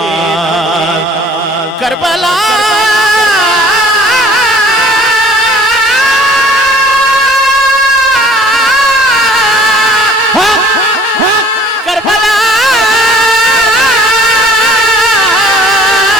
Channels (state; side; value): normal; both; correlation 0.53